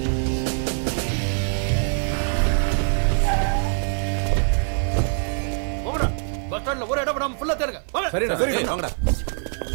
பஸ் ஸ்டாண்ட்ல ஒரு இடம் விடாம ஃபுல்லா தேடுங்க. சரிண்ணா, சரி வாங்கடா.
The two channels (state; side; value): silent; left; 56 dB below the other